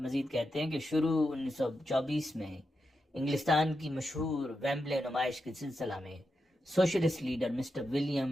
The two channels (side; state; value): both; normal; correlation 0.87